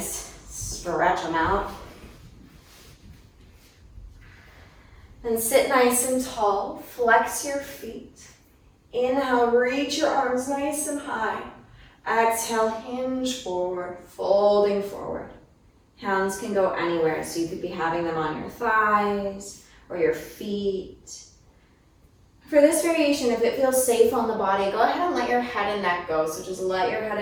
stretch them out. Then sit nice and tall, flex your feet. Inhale, reach your arms nice and high. Exhale, hinge forward, folding forward. Hands can go anywhere, so you could be having them on your thighs or your feet. For this variation, if it feels safe on the body, go ahead and let your head and neck go. So just let your head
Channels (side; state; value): both; identical; correlation 1.00